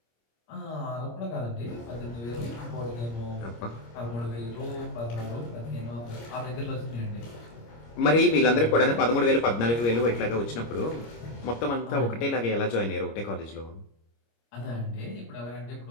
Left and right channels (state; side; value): late; right; 26 ms